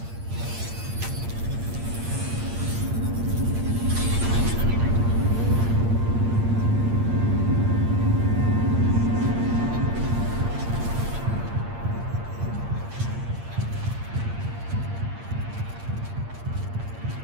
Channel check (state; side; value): late; left; 8.7 ms